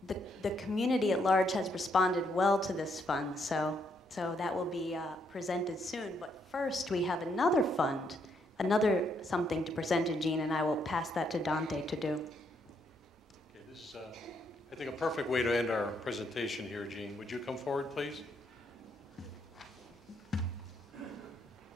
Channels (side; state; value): both; normal; correlation 0.74